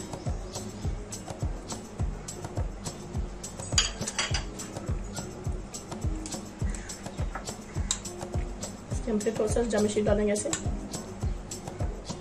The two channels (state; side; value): identical; both; correlation 1.00